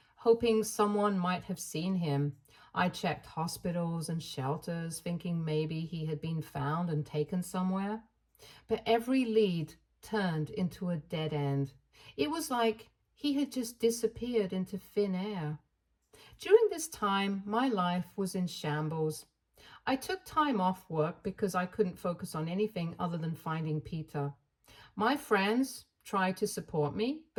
hoping someone might have seen him. I checked hospitals and shelters, thinking maybe he had been found and taken somewhere. But every lead turned into a dead end. It was like he had just disappeared into thin air. During this time, my life was in shambles. I took time off work because I couldn't focus on anything other than finding Peter. My friends tried to support me,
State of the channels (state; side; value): identical; both; correlation 1.00